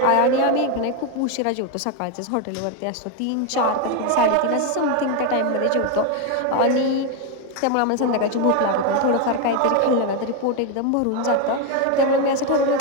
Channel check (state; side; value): different; both; correlation 0.02